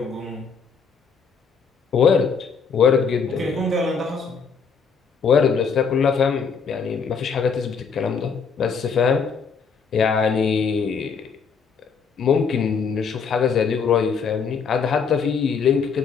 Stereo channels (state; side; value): quieter; right; 5.8 dB